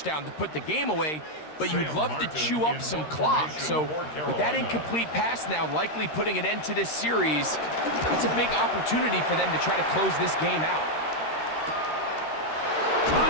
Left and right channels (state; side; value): late; right; 13 ms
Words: to put the game away, but you'd love to chew up some clock. So with that incomplete pass now likely putting an end to this series, it's a big opportunity for them to try to close this game out.